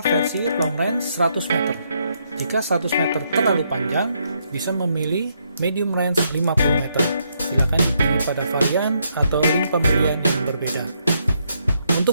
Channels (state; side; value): inverted; both; correlation -0.76